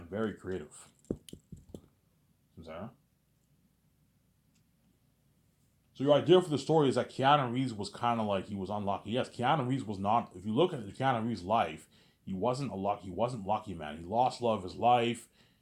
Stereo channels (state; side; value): identical; both; correlation 1.00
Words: very creative. So your idea for the story is that Keanu Reeves was kind of like he was unlucky. Yes, Keanu Reeves was not. If you look at Keanu Reeves' life, he wasn't a lucky. He wasn't lucky, man. He lost love of his life.